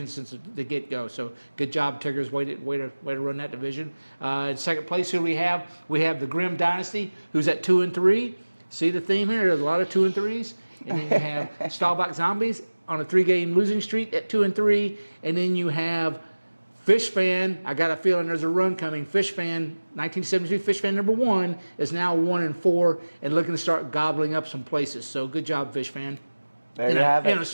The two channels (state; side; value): inverted; both; correlation -1.00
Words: since the get-go. So good job, Tiggers. Way to run that division. In second place, who we have? We have the Grim Dynasty, who's at 2-3. See the theme here? There's a lot of 2-3s. And then you have Stahlbach Zombies on a 3-game losing streak at 2-3. And then you have Fish Fan. I got a feeling there's a run coming. Fish Fan, 1972 Fish Fan number 1 is now 1-4 and looking to start gobbling up some places. So good job, Fish Fan. There you have And it. a